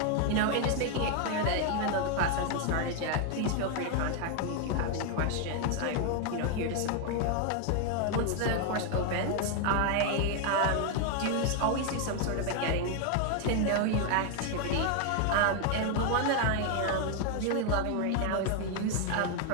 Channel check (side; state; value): both; different; correlation 0.01